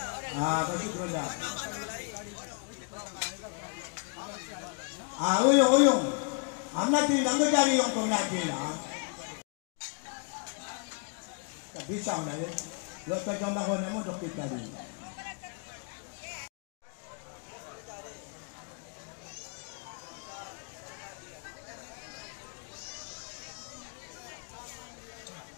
Masuk ronda. Uyung. Anak tu nanggut dari yang kau nak lah. Tak bisa nak le. Lepas jam bahon emo dok kita ni.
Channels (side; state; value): right; quieter; 39.8 dB